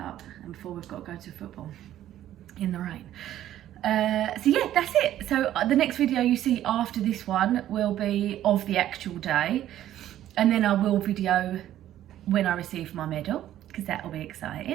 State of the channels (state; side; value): quieter; left; 12.4 dB